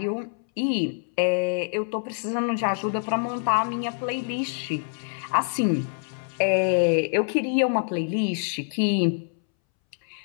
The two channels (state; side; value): silent; right; 61 dB below the other